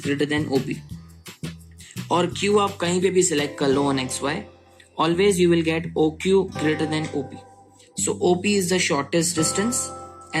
greater than OP. और Q आप कहीं पे भी select कर लो on xy. Always you will get OQ greater than OP. So OP is the shortest distance,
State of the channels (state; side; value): identical; both; correlation 1.00